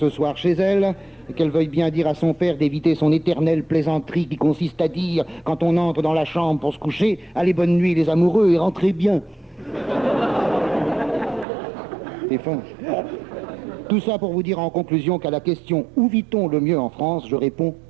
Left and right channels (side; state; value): left; drops out; at 11.5 s